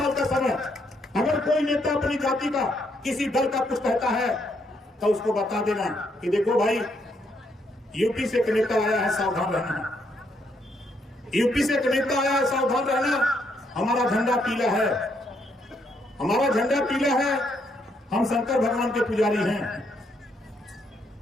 का समय। अगर कोई नेता अपनी जाति का, किसी दल का कुछ कहता है तो उसको बता देना कि देखो भाई, यूपी से एक नेता आया है, सावधान रहना। यूपी से एक नेता आया है, सावधान रहना। हमारा झंडा पीला है, हमारा झंडा पीला है, हम शंकर भगवान के पुजारी हैं।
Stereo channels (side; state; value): both; normal; correlation 0.74